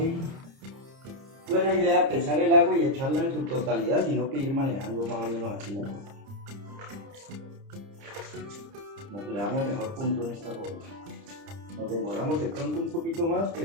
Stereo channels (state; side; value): late; left; 30 ms